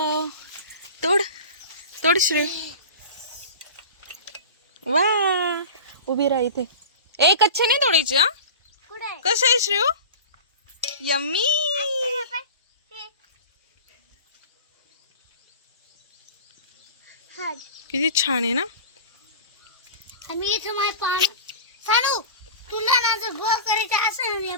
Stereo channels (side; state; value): both; inverted; correlation -0.35